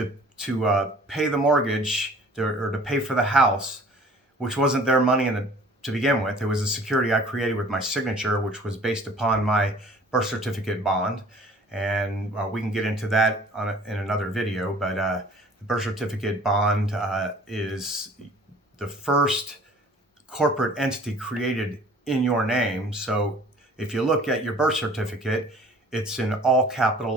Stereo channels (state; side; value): normal; both; correlation 0.50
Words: pay the mortgage to pay for the house, which wasn't their money to begin with. It was a security I created with my signature, which was based upon my birth certificate bond. And we can get into that in another video, but the birth certificate bond is the first corporate entity created in your name. So if you look at your birth certificate, it's in all capital